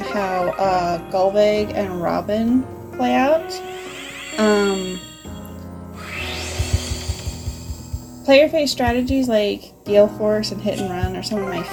Golvig and Robin play out. Player phase strategies like Gale Force and Hit and Run are some of my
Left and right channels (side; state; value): both; identical; correlation 1.00